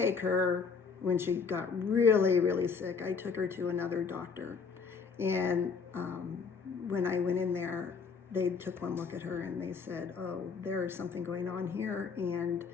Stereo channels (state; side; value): quieter; right; 5.5 dB